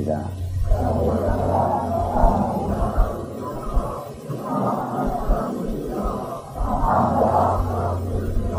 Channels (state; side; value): identical; both; correlation 1.00